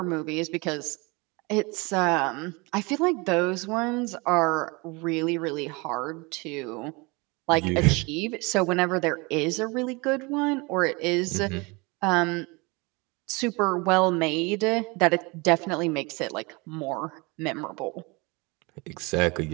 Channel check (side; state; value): left; quieter; 27.0 dB